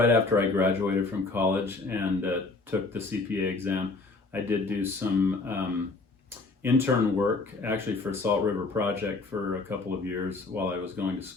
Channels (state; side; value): quieter; right; 3.6 dB